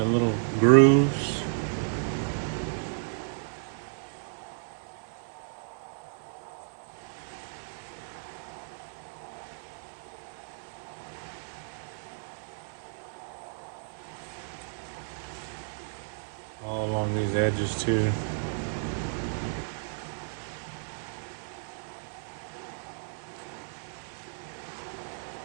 little grooves. All along these edges too.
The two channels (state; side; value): silent; left; 56 dB below the other